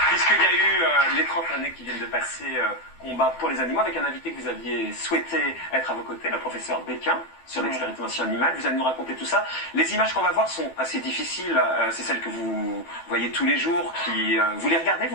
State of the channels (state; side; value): late; right; 12 ms